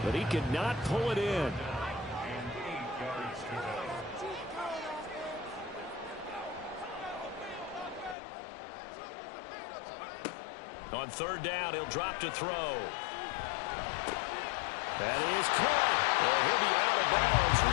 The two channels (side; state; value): right; drops out; at 8.2 s